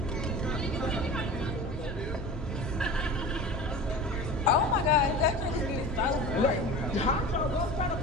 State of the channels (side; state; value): both; normal; correlation 0.35